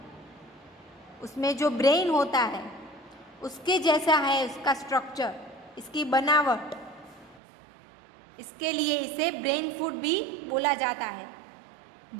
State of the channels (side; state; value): left; drops out; at 7.4 s